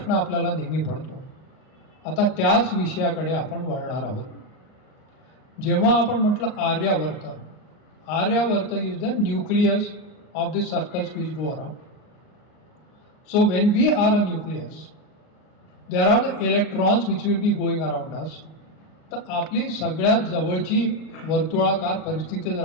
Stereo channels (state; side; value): late; right; 39 ms